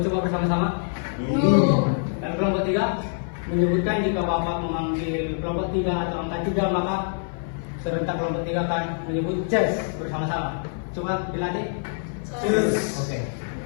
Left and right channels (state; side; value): silent; right; 56 dB below the other